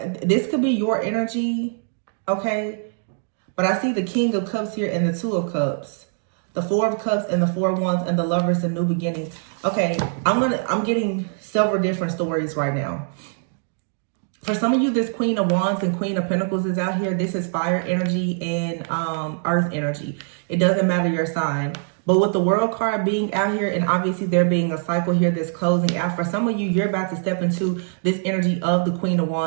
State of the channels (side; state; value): left; silent; digital silence